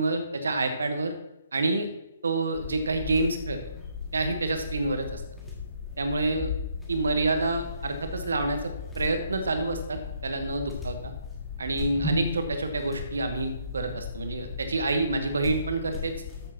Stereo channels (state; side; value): inverted; both; correlation -0.72